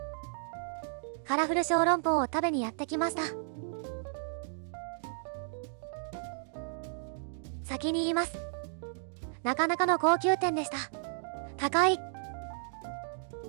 カラフル小籠包を食べにやってきました。先に言います。なかなかの高級店でした。高い。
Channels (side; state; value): left; silent; digital silence